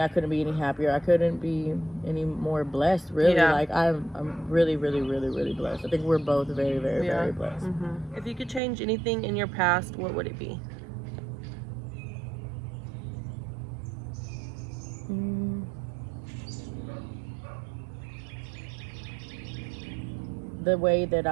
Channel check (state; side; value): drops out; left; at 8.6 s